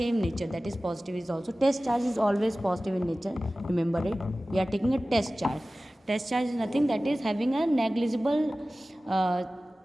nature, that is positive is also. Test charge is always positive in nature, remember it. We are taking a test charge. Test charge is nothing, that is having a negligible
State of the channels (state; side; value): normal; both; correlation 0.97